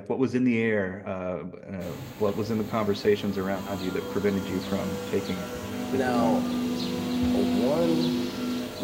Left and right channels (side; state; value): both; identical; correlation 1.00